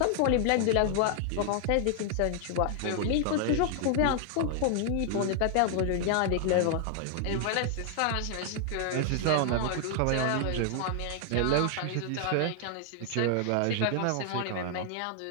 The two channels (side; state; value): both; different; correlation 0.00